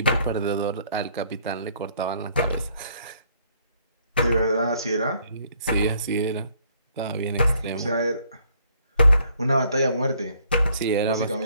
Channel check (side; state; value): both; inverted; correlation -0.65